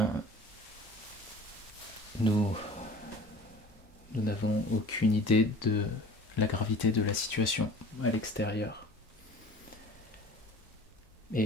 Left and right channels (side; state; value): both; normal; correlation 0.44